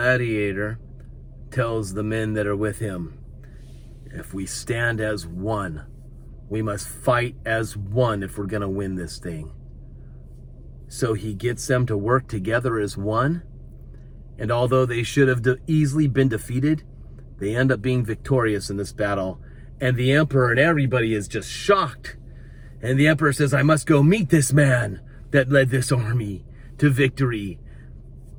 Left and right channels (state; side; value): identical; both; correlation 1.00